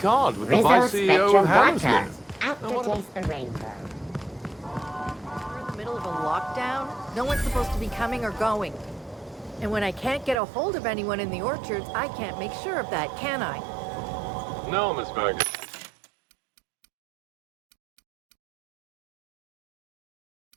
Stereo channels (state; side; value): drops out; left; at 10.4 s